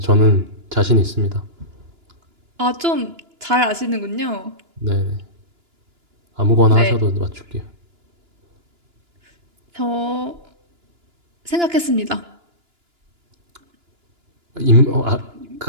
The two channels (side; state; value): left; late; 2.9 ms